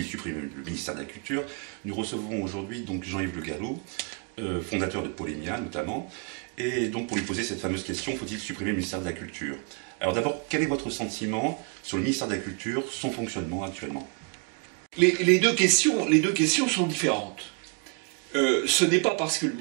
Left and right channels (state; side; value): quieter; left; 33.7 dB